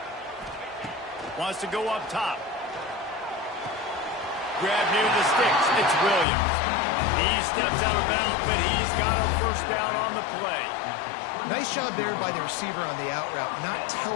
Wants to go up top. Grab near the sticks. It's Williams. He steps out of bounds, but he's got a 1st down on the play. Nice job there by the receiver on the out route, not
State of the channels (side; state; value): right; drops out; at 6.2 s